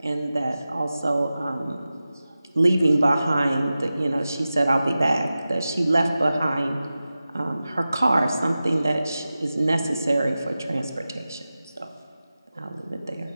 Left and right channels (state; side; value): inverted; both; correlation -0.94